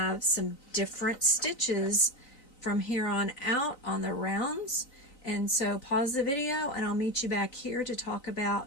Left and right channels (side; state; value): right; late; 3.9 ms